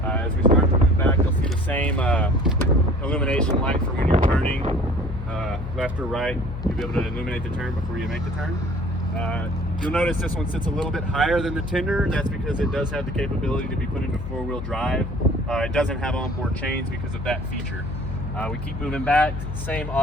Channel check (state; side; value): noise; left; hum, 7 dB below the sound